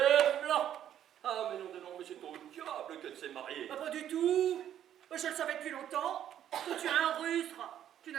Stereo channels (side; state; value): left; quieter; 10.6 dB